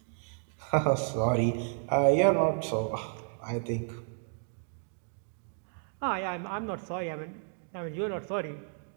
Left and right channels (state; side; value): silent; left; 56 dB below the other